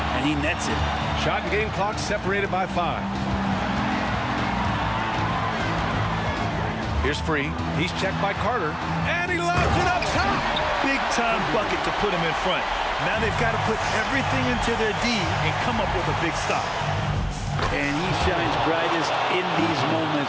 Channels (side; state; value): both; identical; correlation 1.00